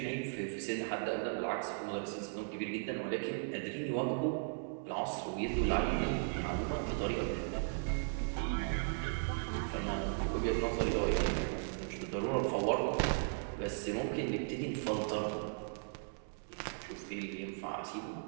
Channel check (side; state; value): left; silent; 53 dB below the other